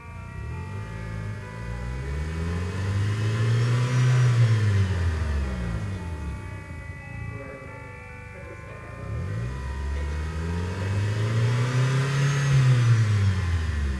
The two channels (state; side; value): identical; both; correlation 1.00